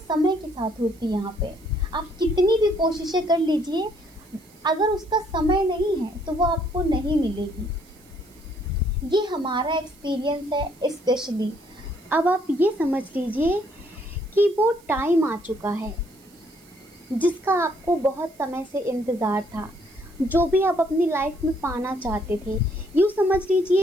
के साथ होती है यहाँ पे। आप कितनी भी कोशिशें कर लीजिए, अगर उसका समय नहीं है तो वो आपको नहीं मिलेगी। ये हमारा एक्सपीरियंस है स्पेशली। अब आप ये समझ लीजिए कि वो टाइम आ चुका है जिसका आपको बहुत समय से इंतज़ार था, जो भी आप अपनी लाइफ में पाना चाहते थे। यूँ समझ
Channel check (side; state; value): right; noise; hiss, 27 dB below the sound